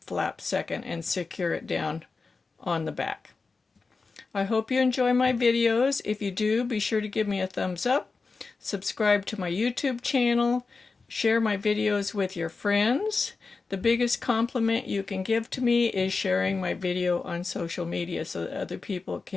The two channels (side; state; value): right; quieter; 4.2 dB